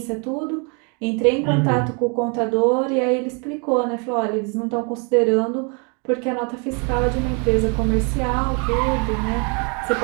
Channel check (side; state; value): left; quieter; 35.3 dB